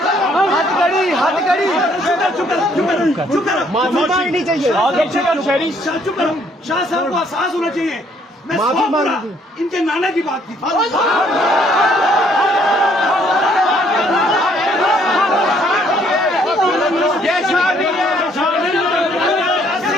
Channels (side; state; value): both; normal; correlation 0.65